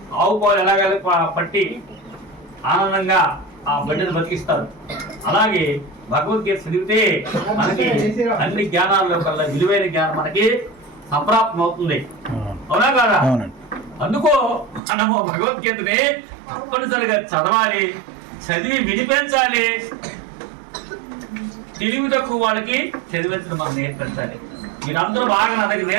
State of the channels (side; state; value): left; drops out; at 14.8 s